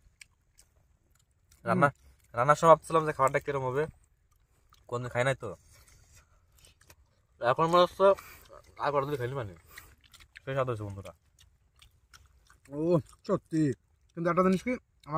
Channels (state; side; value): identical; both; correlation 1.00